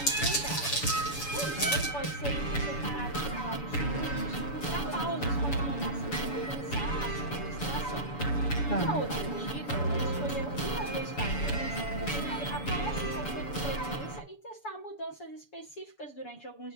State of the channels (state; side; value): late; right; 7.0 ms